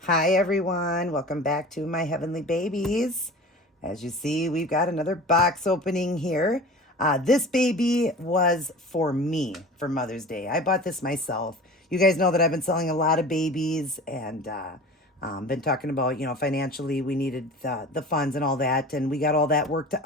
Hi everyone, welcome back to my heavenly babies. As you see, we've got another box opening here. This baby was for me for Mother's Day. I bought this myself. You guys know that I've been selling a lot of babies and been talking about, financially we needed the funds and all that, and we got all that worked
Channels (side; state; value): both; normal; correlation 0.38